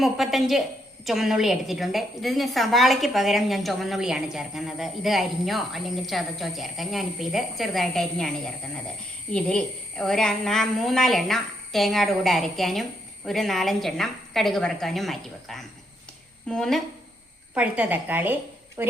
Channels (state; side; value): normal; both; correlation 0.76